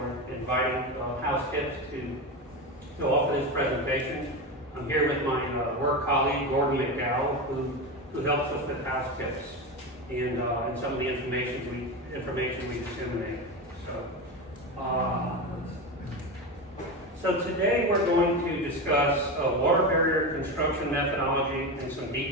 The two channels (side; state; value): both; normal; correlation 0.19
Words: inviting House Tips to offer this presentation. I'm here with my work colleague, Gordon McDowell, who helps us with House Tips and some of the information we disseminate. So today we're going to discuss water barrier construction methodology and some